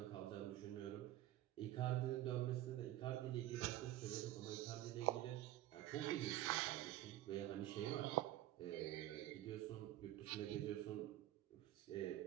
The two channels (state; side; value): quieter; left; 14.5 dB